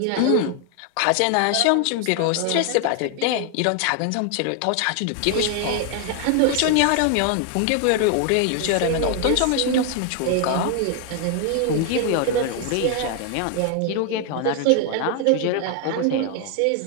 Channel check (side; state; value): both; different; correlation 0.00